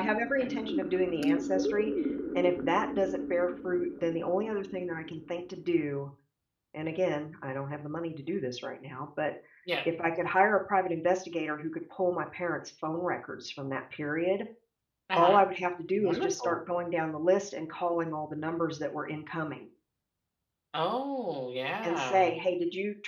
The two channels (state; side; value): identical; both; correlation 1.00